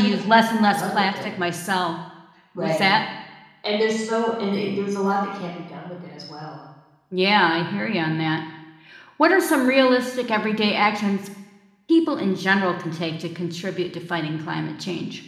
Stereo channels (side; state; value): both; identical; correlation 1.00